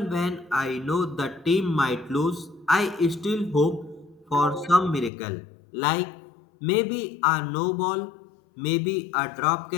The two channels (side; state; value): right; drops out; at 5.1 s